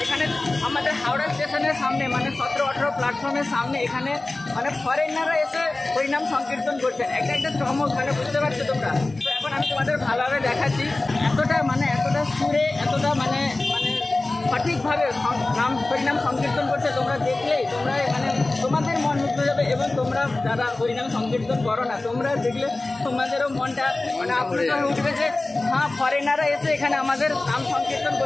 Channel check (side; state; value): right; quieter; 3.0 dB